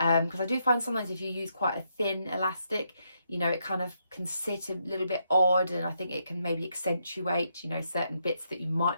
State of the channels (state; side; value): inverted; both; correlation -0.79